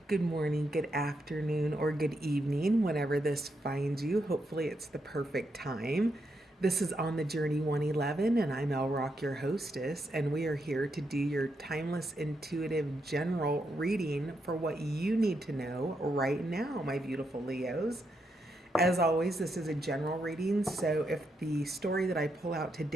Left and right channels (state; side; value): normal; both; correlation 0.81